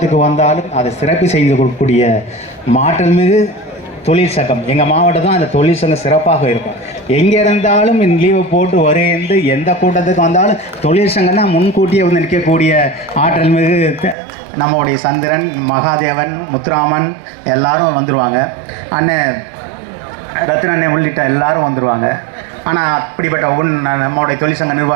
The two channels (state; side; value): drops out; left; at 14.2 s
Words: வந்தாலும் அதை சிறப்பு செய்து கொடுக்கக்கூடிய மாற்றல் மிகு தொழிற்சங்கம் எங்கள் மாவட்டம் தான் அந்த தொழிற்சங்கம் சிறப்பாக இருக்கும். எங்கே இருந்தாலும் லீவை போட்டு வருகின்ற எந்த கூட்டத்துக்கு வந்தாலும் தொழிற்சங்கம் தான் முன்கூட்டியே வந்து நிற்கக்கூடிய ஆற்றல் மிகு நம்மளுடைய சந்திரன், மகாதேவன், முத்துராமன் எல்லாரும் வந்துடுவாங்க. அண்ணன் ரத்னண்ணே உள்ளிட்ட எல்லாரும் வந்துடுவாங்க. ஆனால் அப்படிப்பட்ட நம்மளுடைய தொழிற்சங்க